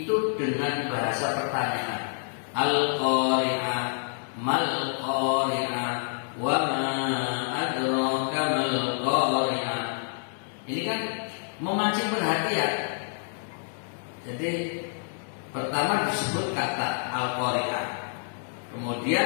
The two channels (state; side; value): silent; right; digital silence